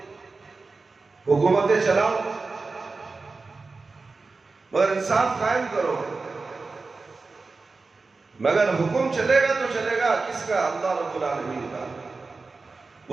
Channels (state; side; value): quieter; left; 4.0 dB